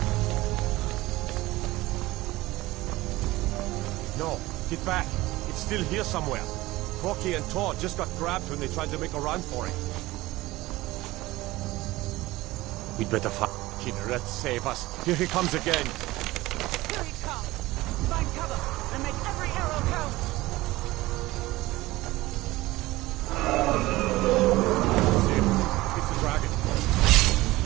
No, get back. It's still here somewhere. Corky and Tor just got grabbed when they tried to make a run for it. We'd better find Kinneret, save us. Here he comes again. Here he comes! Find cover and make every arrow count! See him. It's the dragon.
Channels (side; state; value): left; quieter; 18.7 dB